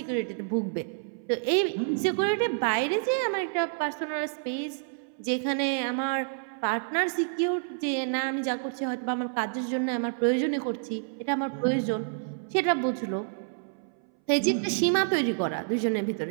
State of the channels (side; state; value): left; silent; 59 dB below the other